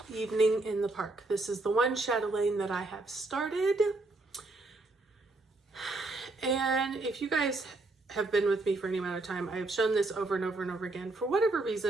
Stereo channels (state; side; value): quieter; left; 3.1 dB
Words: Evening in the Park. This is the one chatelaine that I have started. And if you guys have been with me for any amount of time, I have shown this over and over and over again. For whatever